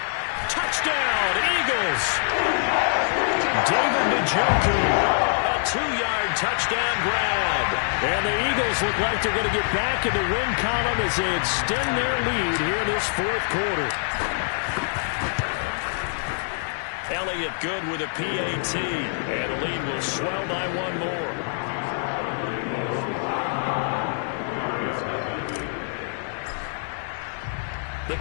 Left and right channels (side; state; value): right; silent; digital silence